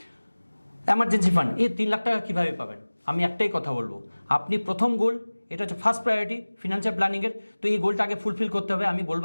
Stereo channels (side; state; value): both; inverted; correlation -1.00